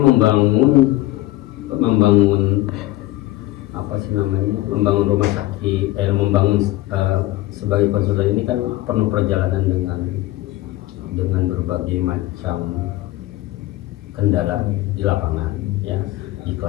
membangun rumah sakit, sebagai konsultan ini kan penuh perjalanan dengan berbagai macam kendala di lapangan, ya, di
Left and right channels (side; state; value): right; quieter; 17.2 dB